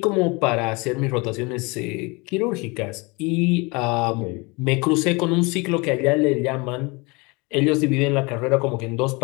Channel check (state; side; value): quieter; right; 27.2 dB